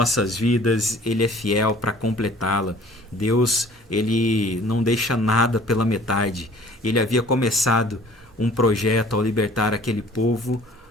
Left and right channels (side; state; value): both; normal; correlation 0.52